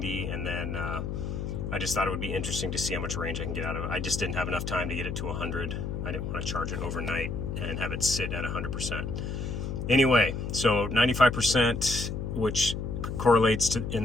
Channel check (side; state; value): left; noise; hum, 4 dB below the sound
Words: and then I just thought it would be interesting to see how much range I can get out of it. I just didn't have enough time to get it to 100. I didn't want to charge it overnight and have it sit at 100%. Anyway, so 95%, which correlates to, in